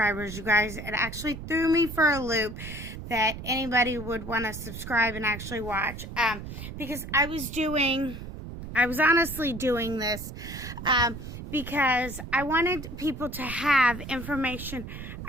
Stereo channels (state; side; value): noise; right; rumble, 10 dB below the sound